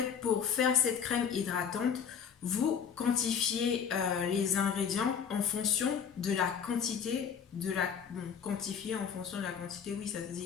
pour faire cette crème hydratante, vous quantifiez les ingrédients en fonction de la quantité quantifier en fonction de la quantité, oui ça se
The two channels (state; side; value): quieter; right; 7.3 dB